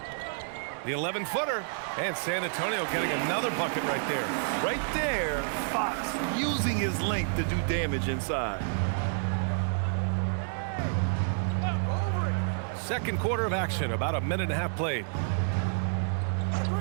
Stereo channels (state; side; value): silent; left; digital silence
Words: The 11-footer. And San Antonio getting another bucket right there. Right there, Fox using his length to do damage inside. Second quarter of action, about a minute and a half played.